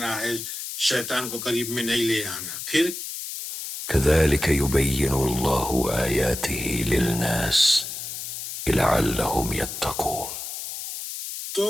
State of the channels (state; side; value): noise; left; hiss, 7 dB below the sound